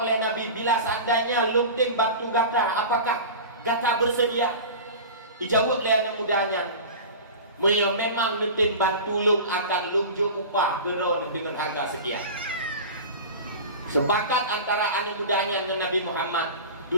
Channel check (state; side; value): inverted; both; correlation -0.33